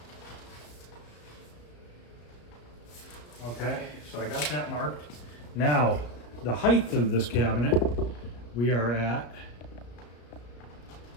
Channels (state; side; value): late; right; 34 ms